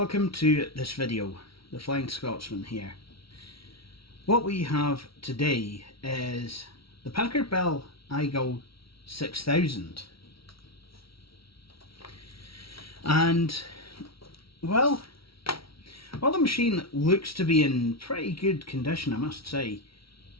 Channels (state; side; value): late; right; 0.75 ms